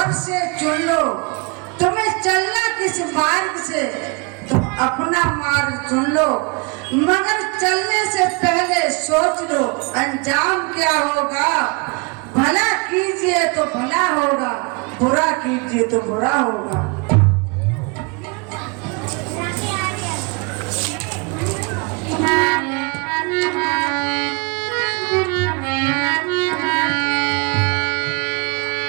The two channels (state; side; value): quieter; left; 31.3 dB